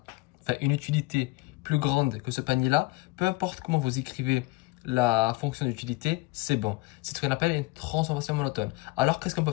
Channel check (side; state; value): right; quieter; 22.5 dB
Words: enfin, une utilité plus grande que ce panier-là, peu importe comment vous écrivez la fonction d'utilité, c'est bon. C'est ce qu'on appelle une transformation monotone. Alors, qu'est-ce qu'on peut